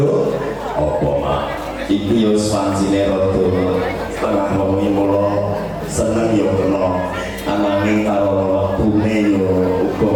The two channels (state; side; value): identical; both; correlation 1.00